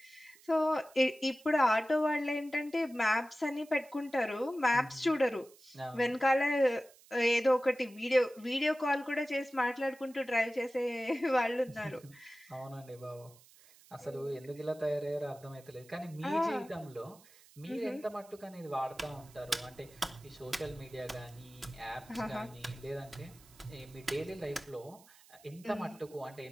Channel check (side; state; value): right; noise; hiss, 25 dB below the sound